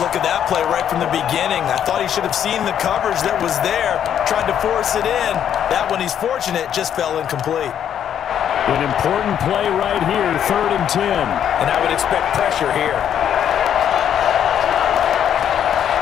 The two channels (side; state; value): right; quieter; 9.4 dB